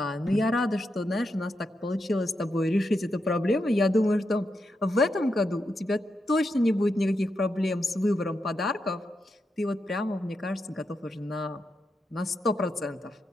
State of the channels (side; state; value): both; normal; correlation 0.85